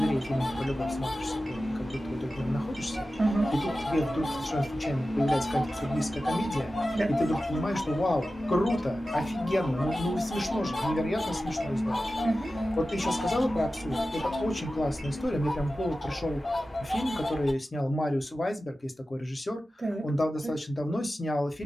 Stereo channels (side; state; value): both; normal; correlation 0.94